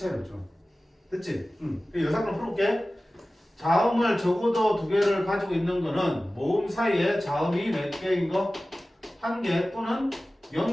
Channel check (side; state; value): both; normal; correlation 0.96